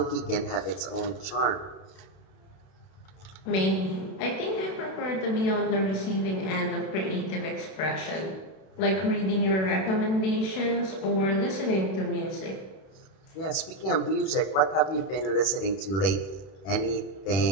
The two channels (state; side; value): late; right; 32 ms